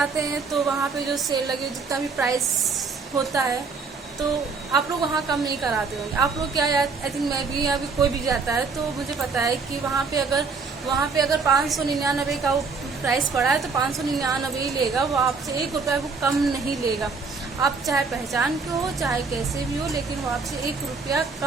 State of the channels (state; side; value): quieter; left; 4.6 dB